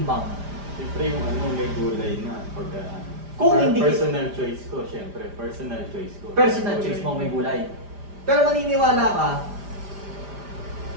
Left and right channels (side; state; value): left; late; 5.0 ms